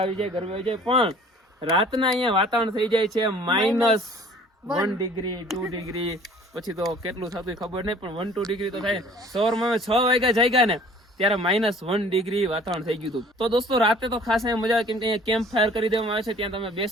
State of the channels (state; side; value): normal; both; correlation 0.51